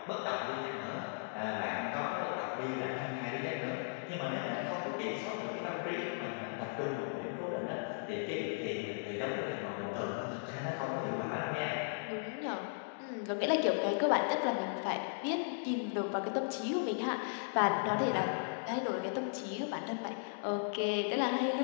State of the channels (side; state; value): right; silent; digital silence